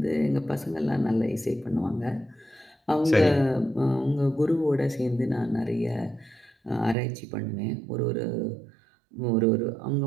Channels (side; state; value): left; drops out; at 7.0 s